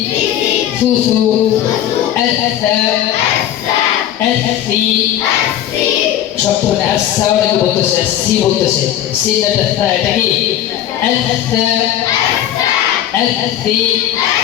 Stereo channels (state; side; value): quieter; right; 11.5 dB